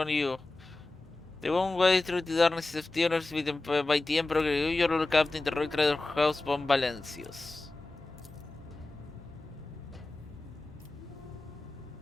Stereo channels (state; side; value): quieter; right; 3.0 dB